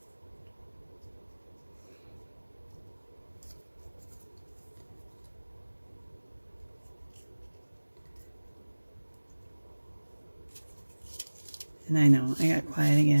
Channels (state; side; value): inverted; both; correlation -1.00